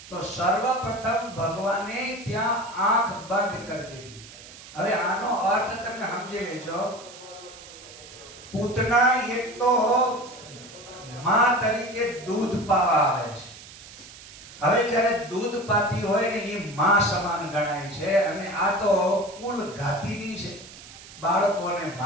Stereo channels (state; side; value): noise; right; hiss, 17 dB below the sound